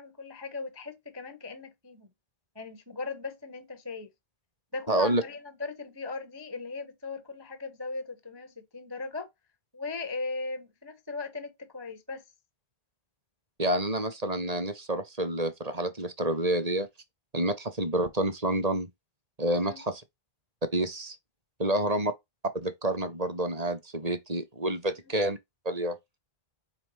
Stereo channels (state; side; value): late; left; 1.8 ms